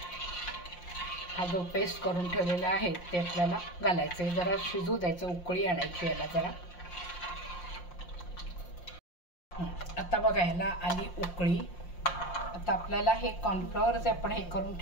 हा जो पेस्ट करून ठेवलेला आहे ते आपल्याला घालायचं आहे. जरा शिजू द्यायचं, उकळी आणायची याला जरा. आता बघा ह्याला आली उकळी. आता आपल्याला हे कॉर्नफ्लॉवर जे आपण हे करून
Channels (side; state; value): right; late; 5.7 ms